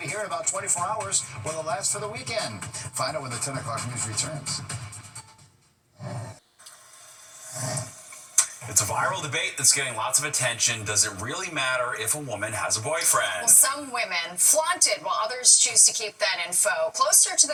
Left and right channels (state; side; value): identical; both; correlation 1.00